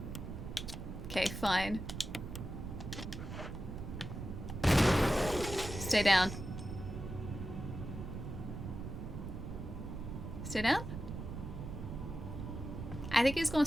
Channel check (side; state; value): right; noise; rumble, 7 dB below the sound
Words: Okay, fine. Stay down. Stay down? I think he's gonna